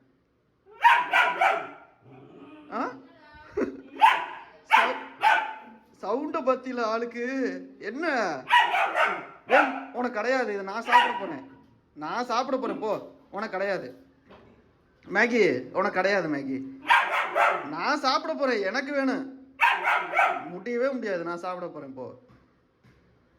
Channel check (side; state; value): both; identical; correlation 1.00